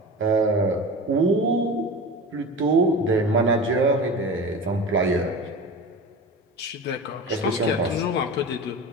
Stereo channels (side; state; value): both; normal; correlation 0.31